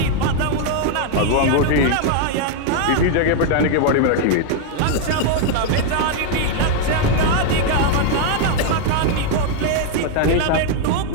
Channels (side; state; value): both; different; correlation 0.00